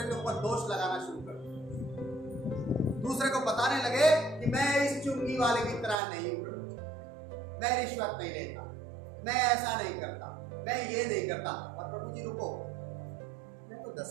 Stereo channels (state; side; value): drops out; left; at 6.0 s